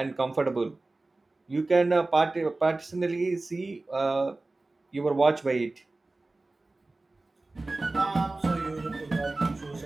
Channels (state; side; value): quieter; left; 3.1 dB